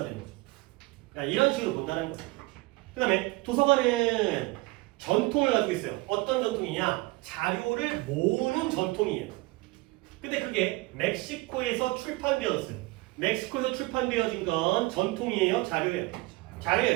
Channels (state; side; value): quieter; left; 22.4 dB